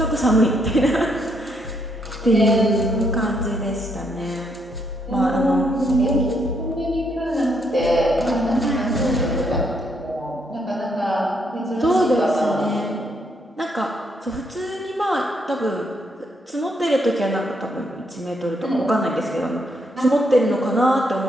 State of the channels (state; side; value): normal; both; correlation 0.74